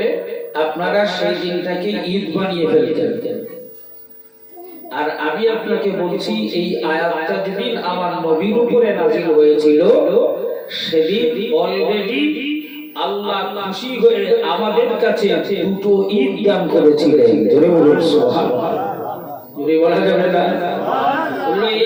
আপনারা সেই দিনটাকে ঈদ বানিয়ে ফেলতেন, আর আমি আপনাকে বলছি এই আয়াতটা যেদিন আমার নবীর উপরে নাজিল হয়েছিল সেদিন অলরেডি আল্লাহ খুশি হয়ে আমাদের কাছে দুটো ঈদ দান করেছিলেন। জোরে বলুন সুবহানাল্লাহ। জোরে বলা যাবে না?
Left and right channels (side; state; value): both; identical; correlation 1.00